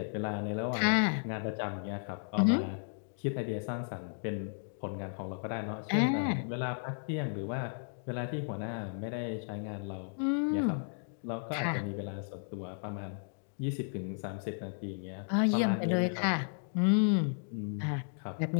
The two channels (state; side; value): silent; right; digital silence